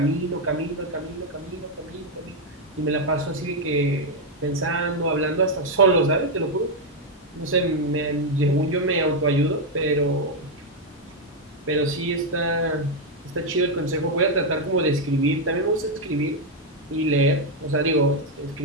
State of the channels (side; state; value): both; normal; correlation 0.01